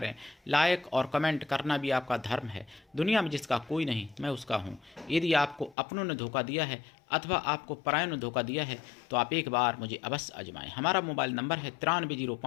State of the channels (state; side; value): drops out; right; at 5.8 s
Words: लाइक और कमेंट करना भी आपका धर्म है। दुनिया में जिसका कोई नहीं, मैं उसका हूँ। यदि आपको अपनों ने धोखा दिया है अथवा आपको परायों ने धोखा दिया है तो आप एक बार मुझे अवश्य आजमाएं। हमारा मोबाइल नंबर है